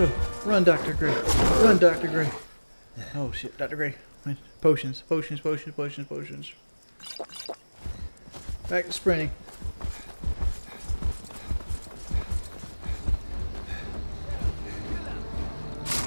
Run, Dr. Gray. Run, Dr. Gray. Oh shit, Dr. Gray. Potions, potions, potions, potions, potions. Back to sprinting.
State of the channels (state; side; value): inverted; both; correlation -1.00